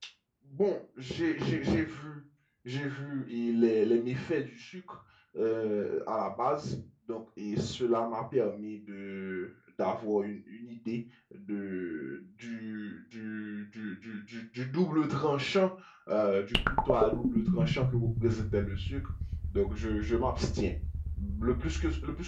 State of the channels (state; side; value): identical; both; correlation 1.00